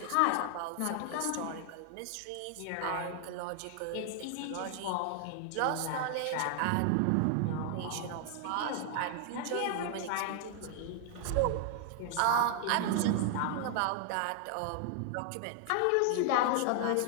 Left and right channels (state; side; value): different; both; correlation 0.00